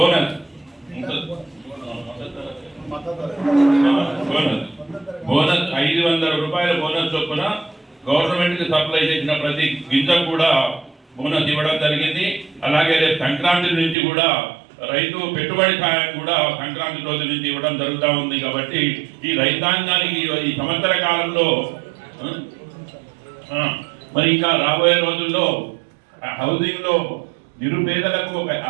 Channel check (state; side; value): drops out; left; at 14.0 s